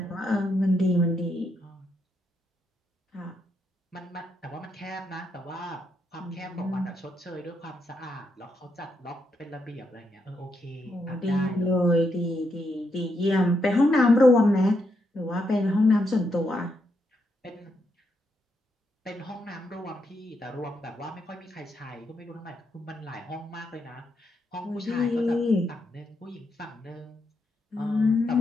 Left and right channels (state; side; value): normal; both; correlation 0.80